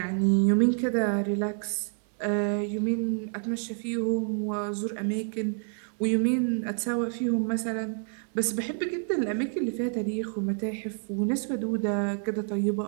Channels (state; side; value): silent; left; 59 dB below the other